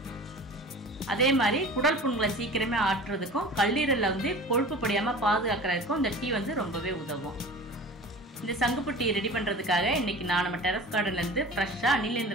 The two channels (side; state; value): both; normal; correlation 0.39